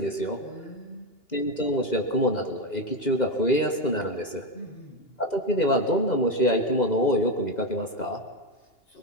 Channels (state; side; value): late; right; 2.0 ms